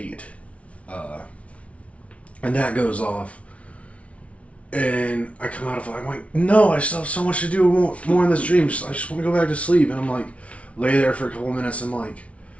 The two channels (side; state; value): right; late; 0.064 ms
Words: And that goes off. And I come out of it, I'm like, no, I still have so much to do more in this dream. I just want to go back to sleep. And I'm like, lay there for a couple minutes. I'm like,